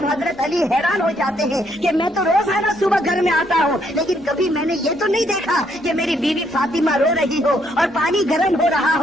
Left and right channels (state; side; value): normal; both; correlation 0.72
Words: حضرت علی حیران ہو جاتے ہیں کہ میں تو روزانہ صبح گھر میں آتا ہوں, لیکن کبھی میں نے یہ تو نہیں دیکھا کہ میری بیوی فاطمہ رو رہی ہو اور پانی گرم ہو رہا